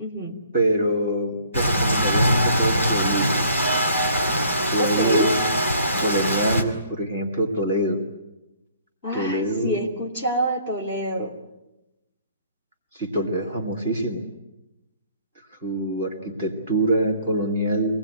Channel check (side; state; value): both; inverted; correlation -0.57